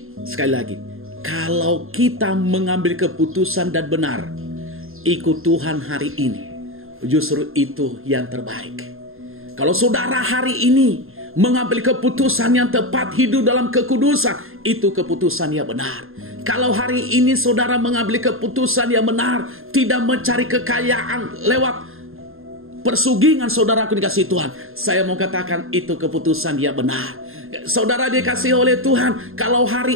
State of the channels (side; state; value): left; late; 0.61 ms